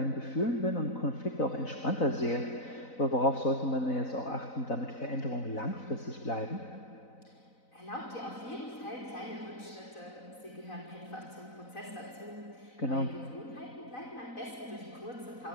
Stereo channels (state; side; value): late; right; 4.0 ms